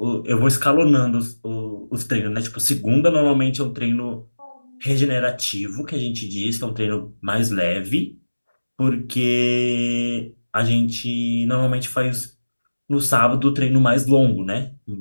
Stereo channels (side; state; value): both; inverted; correlation -1.00